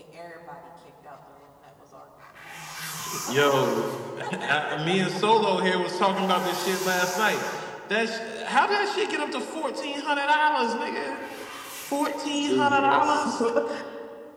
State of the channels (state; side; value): identical; both; correlation 1.00